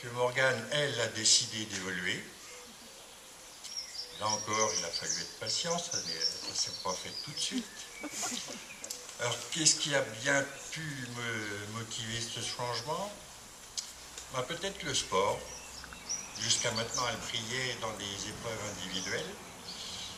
que Morgane, elle, a décidé d'évoluer. Là encore, il a fallu être patient, ça ne s'est pas fait tout de suite. Alors, qu'est-ce qui a bien pu me motiver ce changement? Peut-être le sport. Jusqu'à maintenant, elle brillait dans des épreuves individuelles.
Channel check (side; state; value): both; identical; correlation 1.00